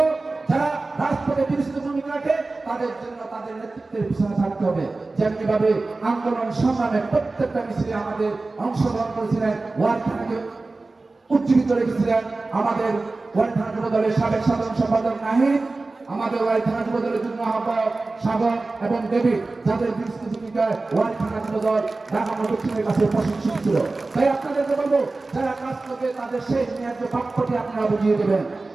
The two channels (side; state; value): left; quieter; 3.4 dB